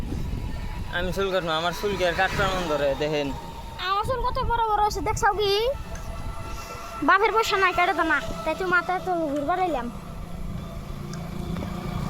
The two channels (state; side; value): identical; both; correlation 1.00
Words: আমি চুল কাটবো, আমার চুল কি আর কাটবার মন ধরে? দেখেন আমার চুল কত বড় বড় হয়েছে দেখছাও কি? বাপের পয়সা নাই কেটে তো না, তাই তো মাথায় তো ঘুরবার এলাম।